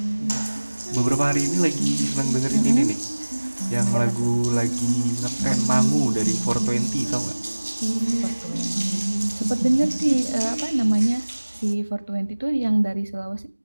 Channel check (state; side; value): inverted; both; correlation -1.00